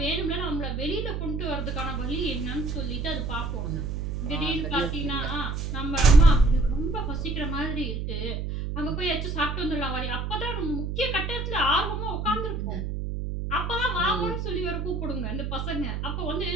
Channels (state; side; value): noise; right; hum, 3 dB below the sound